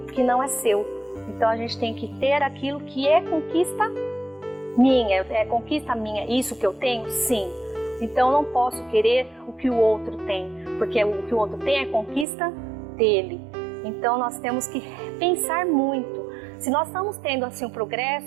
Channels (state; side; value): drops out; left; at 12.2 s